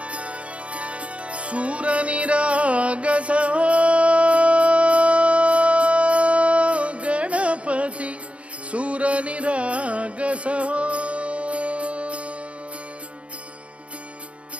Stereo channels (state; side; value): late; left; 0.062 ms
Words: सूर निरागस हो गणपती सूर निरागस हो